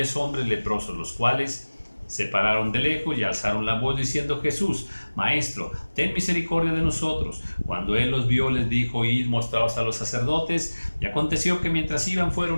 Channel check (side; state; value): both; inverted; correlation -1.00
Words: hombres leprosos, los cuales se pararon de lejos y alzaron la voz diciendo, Jesús, Maestro, ten misericordia de nosotros. Cuando él los vio, les dijo, id, mostraos a los sacerdotes. Y aconteció que mientras iban